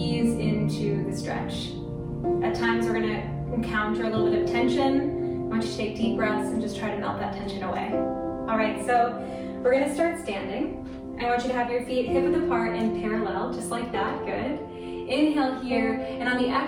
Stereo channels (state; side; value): identical; both; correlation 1.00